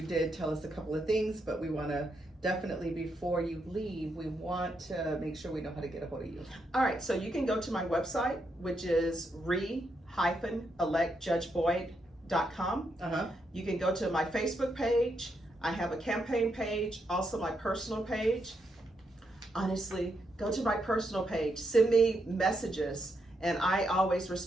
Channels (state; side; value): normal; both; correlation 0.80